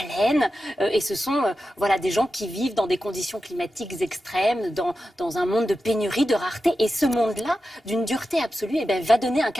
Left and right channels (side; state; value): both; normal; correlation 0.91